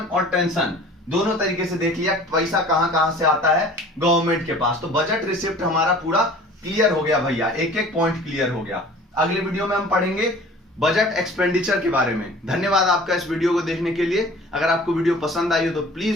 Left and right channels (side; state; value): both; normal; correlation 0.46